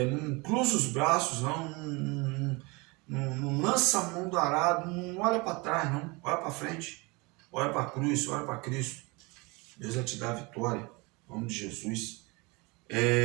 não cruza os braços, não lança a mão do arado, não olha para trás, não. Olha para frente, olha para a cruz, olha para Cristo. Deus vai te dar a vitória, em nome de Jesus.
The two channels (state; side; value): quieter; left; 26.5 dB